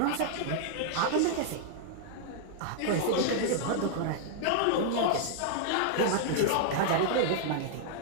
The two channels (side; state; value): both; different; correlation -0.01